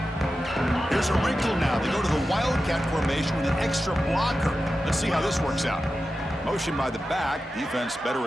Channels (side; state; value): both; normal; correlation 0.92